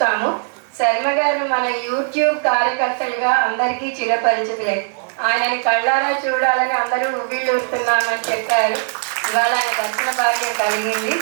శర్మ గారు మన యూట్యూబ్ కార్యకర్తలుగా అందరికీ చిరపరిచితులే. ఆయనని కళ్ళారా చూడాలని అందరూ ఉవ్విళ్ళూరుతున్నామని చెప్పారు. ఇవాళ ఆయన దర్శన భాగ్యం కలిగింది.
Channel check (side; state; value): left; silent; 66 dB below the other